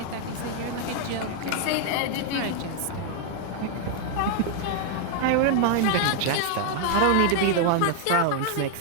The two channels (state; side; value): different; both; correlation 0.00